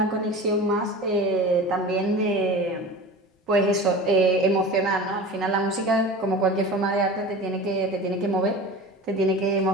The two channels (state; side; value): normal; both; correlation 0.34